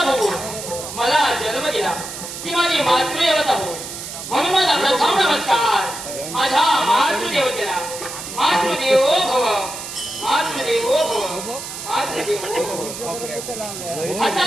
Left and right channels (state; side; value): noise; right; hiss, 9 dB below the sound